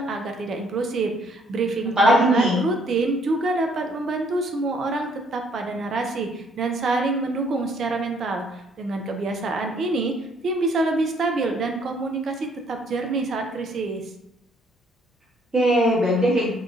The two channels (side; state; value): both; normal; correlation 0.65